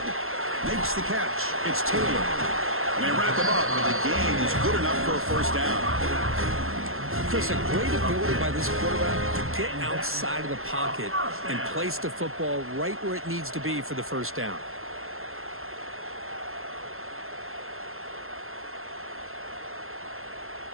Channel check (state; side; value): late; left; 0.62 ms